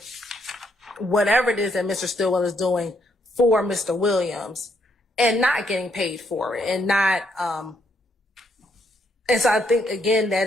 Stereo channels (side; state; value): both; normal; correlation 0.73